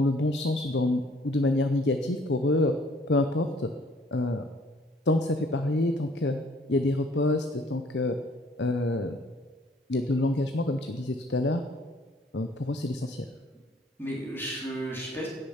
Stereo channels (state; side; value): normal; both; correlation 0.59